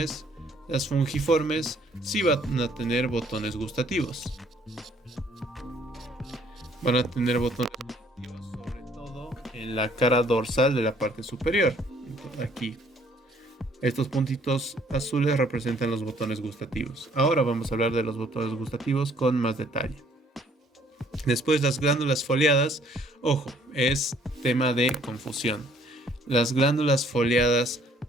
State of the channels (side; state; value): both; normal; correlation 0.62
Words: Las fungiformes sí van a tener botones gustativos. Van a tener botones gustativos sobre todo en la cara dorsal de la parte superior. Entonces, aquí. Estos puntitos azules representan los botones gustativos. Ahora vamos a hablar de los botones gustativos con más detalle. Después, las glándulas foliadas. Ojo, es tema de confusión. Las glándulas foliadas